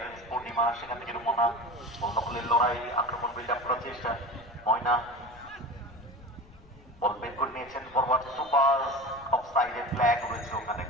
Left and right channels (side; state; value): left; noise; rumble, 24 dB below the sound